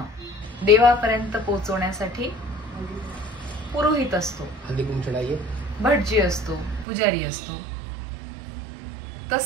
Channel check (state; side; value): drops out; left; at 6.9 s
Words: देवापर्यंत पोहोचवण्यासाठी पुरोहित असतो, भटजी असतो, पुजारी असतो.